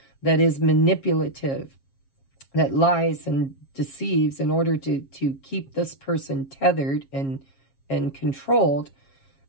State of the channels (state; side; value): late; right; 7.4 ms